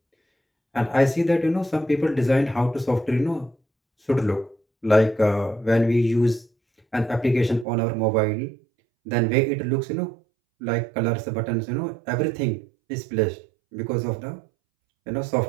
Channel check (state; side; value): drops out; left; at 7.7 s